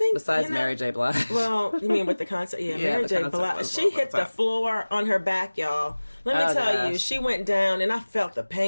besides Mary J. Blige. Well, you mean with the concert? Yeah, Mary J. Blige. She hit the floor on her back, y'all. Let me tell you, she went down, and I felt the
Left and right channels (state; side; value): inverted; both; correlation -1.00